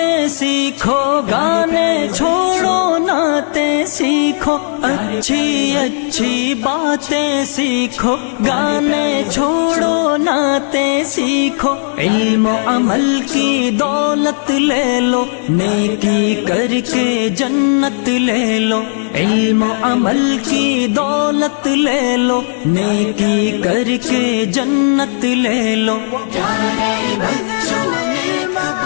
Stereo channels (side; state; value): right; silent; digital silence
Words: سیکھو، گانے چھوڑو نعتیں سیکھو، اچھی اچھی باتیں سیکھو، گانے چھوڑو نعتیں سیکھو، علم و عمل کی دولت لے لو، نیکی کر کے جنت لے لو، علم و عمل کی دولت لے لو، نیکی کر کے جنت لے لو، پیارے بچوں نیک